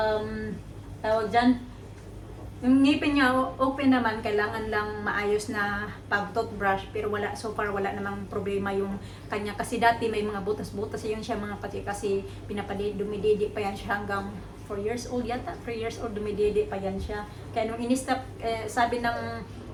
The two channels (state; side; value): identical; both; correlation 1.00